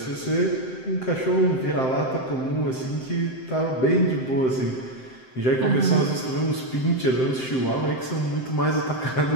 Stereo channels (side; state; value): right; late; 7.7 ms